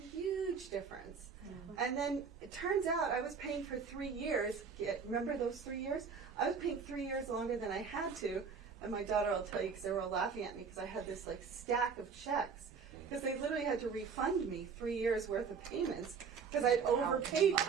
difference. And then it turns out I was paying for 3 years. Remember those 3 years? I was paying 3 years longer than I had to. And my daughter will tell you, because they were all laughing at me, because I had this like stack of checks. Because they literally had to refund me 3 years worth of payments because I'd overpaid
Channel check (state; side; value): quieter; left; 5.8 dB